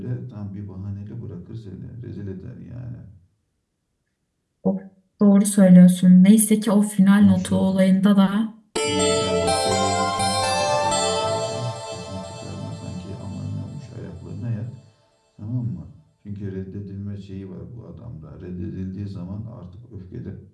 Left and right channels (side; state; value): both; identical; correlation 1.00